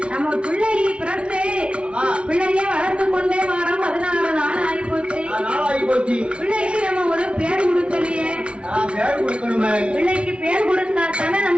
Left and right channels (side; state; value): left; late; 0.059 ms